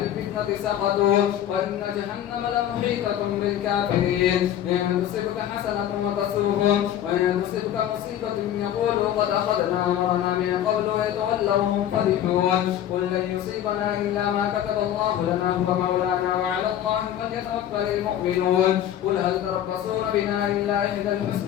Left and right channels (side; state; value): right; quieter; 11.0 dB